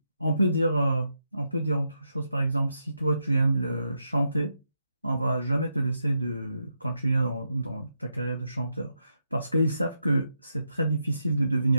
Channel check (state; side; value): inverted; both; correlation -0.83